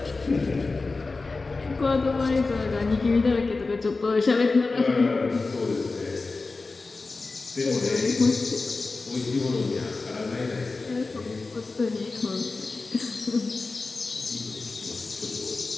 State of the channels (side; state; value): right; quieter; 3.7 dB